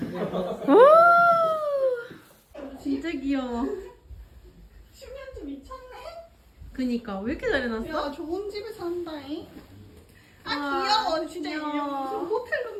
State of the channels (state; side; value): identical; both; correlation 1.00